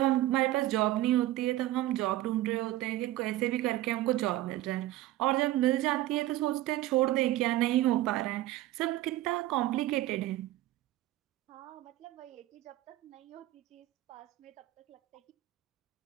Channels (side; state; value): left; quieter; 15.4 dB